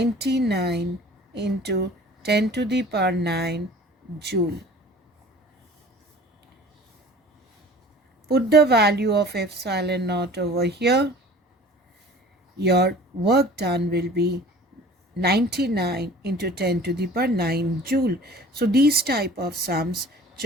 into 10 to the power 9 joule. Put the value of epsilon naught over here. Your work done will be 99 into 10 to the power 9 joule. So these type of sums,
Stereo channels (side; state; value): both; normal; correlation 0.45